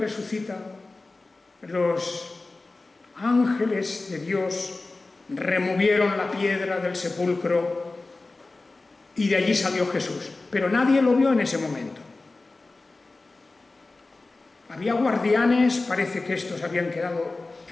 los ángeles de Dios removieron la piedra del sepulcro y de allí salió Jesús. Pero nadie lo vio en ese momento. Había guardianes, parece que estos habían quedado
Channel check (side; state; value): right; quieter; 3.4 dB